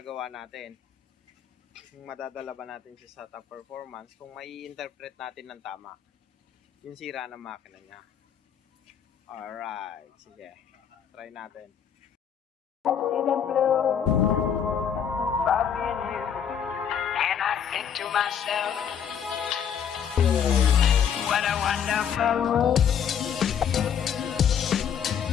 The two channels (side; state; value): right; quieter; 8.1 dB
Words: natin. Kung madadala ba natin siya sa top performance, kung may interpret natin ng tama yung sira ng makina niya. Alright, sige. Try natin. And I think to myself, what a wonderful world.